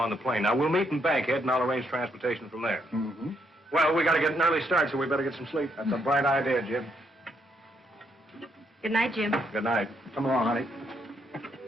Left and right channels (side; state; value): both; normal; correlation 0.75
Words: the plane. Now, we'll meet in Bankhead, and I'll arrange transportation from there. Mm-hmm. Well, we got to get an early start, so we better get some sleep. That's a bright idea, Jim. Good night, Jim. Good night. Come along, honey.